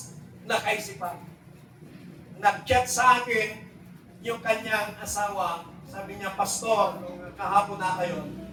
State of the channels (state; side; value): identical; both; correlation 1.00